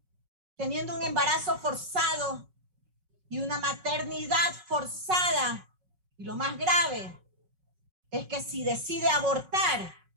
teniendo un embarazo forzado y una maternidad forzada. Y lo más grave es que si decide abortar,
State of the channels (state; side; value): late; left; 5.4 ms